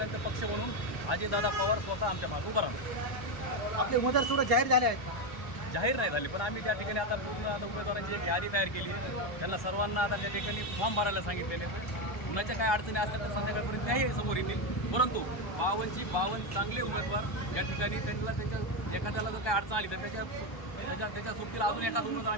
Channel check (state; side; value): late; right; 1.2 ms